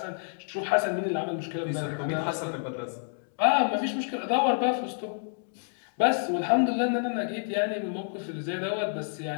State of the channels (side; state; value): right; silent; digital silence